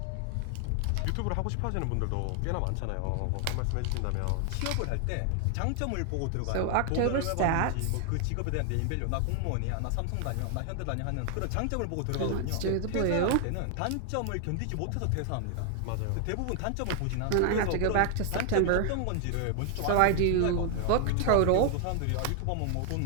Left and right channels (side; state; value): both; different; correlation 0.00